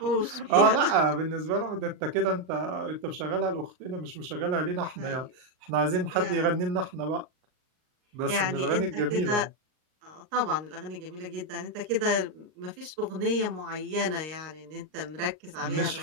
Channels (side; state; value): left; late; 39 ms